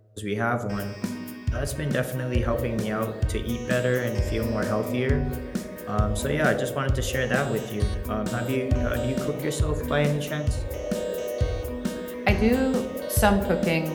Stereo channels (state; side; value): identical; both; correlation 1.00